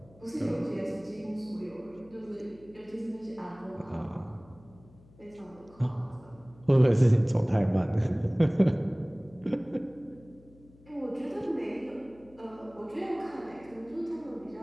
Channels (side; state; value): left; noise; hum, 25 dB below the sound